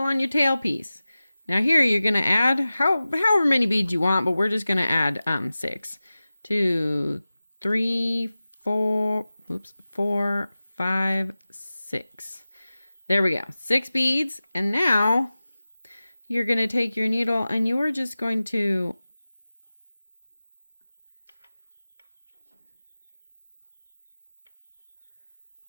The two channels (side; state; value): both; inverted; correlation -0.96